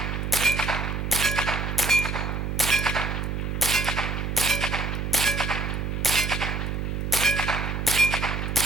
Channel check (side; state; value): right; noise; hum, 2 dB below the sound